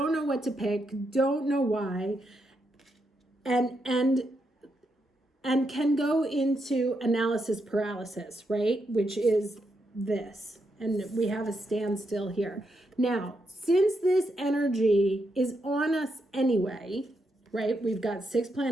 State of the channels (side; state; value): both; normal; correlation 0.82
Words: know what to pick, don't know why, and can go into analysis paralysis, right? Which is this. And we have a standstill here. Now, since this energy is on us anyway, right? We've got 6